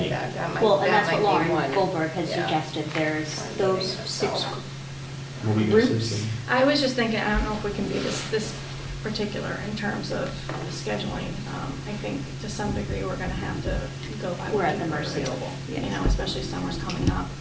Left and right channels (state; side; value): identical; both; correlation 1.00